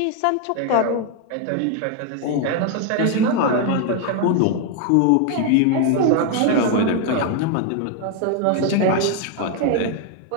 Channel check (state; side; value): different; both; correlation 0.01